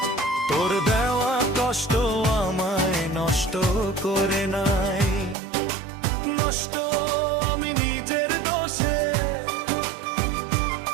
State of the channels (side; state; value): left; drops out; at 5.4 s